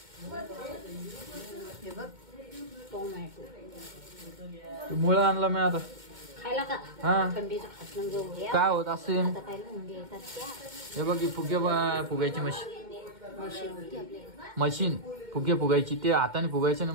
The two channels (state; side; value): late; left; 2.1 ms